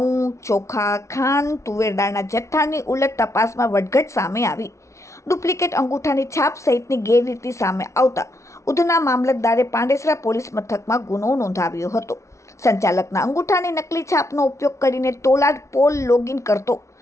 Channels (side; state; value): right; late; 0.14 ms